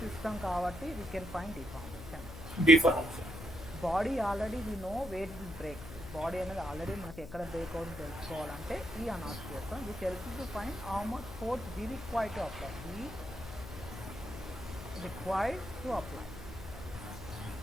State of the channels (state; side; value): noise; left; hum, 12 dB below the sound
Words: సిస్టమ్ కాబట్టి we can find deformation. Body already we know where the break. Body అనేది already మనకి ఎక్కడ break అవుతుంది తెలుసుకోవాలంటే ఈ అనాలిసిస్ చేస్తాం. Which helps to find how much force we required to apply.